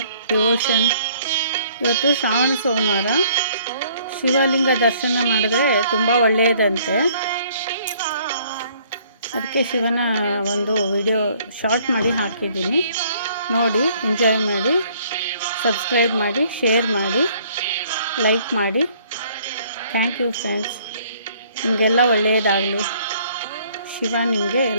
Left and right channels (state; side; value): inverted; both; correlation -0.60